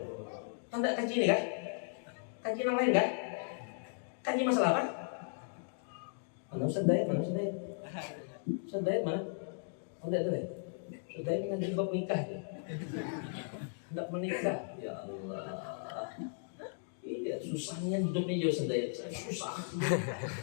Tanda kaji ini kan? Kaji yang lain kan? Kaji masalah apa? Mana Ustaz Dayat? Ustaz Dayat mana? Oh, Ustaz Dayat ngaji bab nikah ya? Tidak menikah. Ya Allah. Iya, susahnya hidupnya jauh Ustaz Dayat. Susah.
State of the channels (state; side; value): silent; right; digital silence